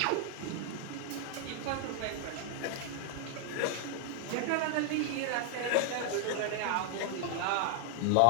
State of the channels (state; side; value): different; both; correlation 0.00